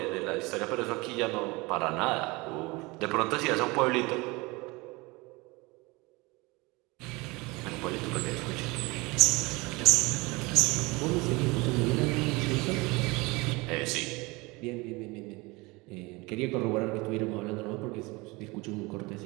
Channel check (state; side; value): quieter; left; 24.2 dB